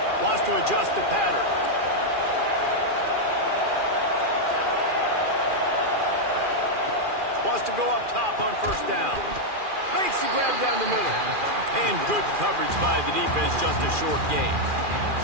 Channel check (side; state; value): left; late; 2.4 ms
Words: Wants to adjust the pattern. Wants to go up top on 1st down. Makes the grab down the middle. And good coverage by the defense, just a short gain.